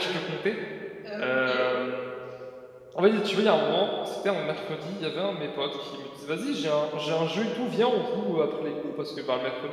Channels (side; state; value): both; identical; correlation 1.00